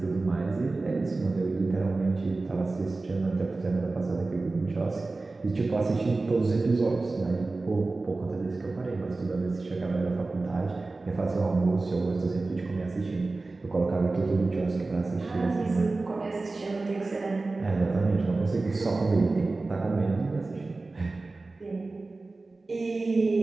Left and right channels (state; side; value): quieter; left; 3.4 dB